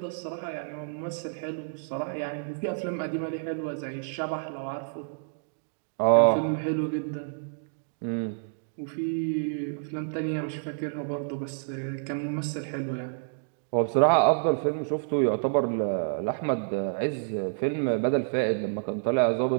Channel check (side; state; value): left; silent; digital silence